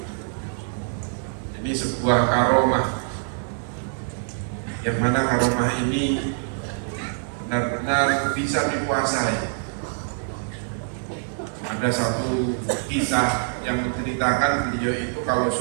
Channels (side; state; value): left; silent; digital silence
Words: Ini sebuah karomah, yang mana karomah ini benar-benar bisa dikuasai. Ada satu kisah yang menceritakan beliau itu kalau